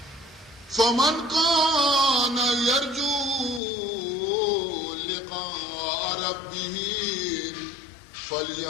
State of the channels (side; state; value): right; drops out; at 3.6 s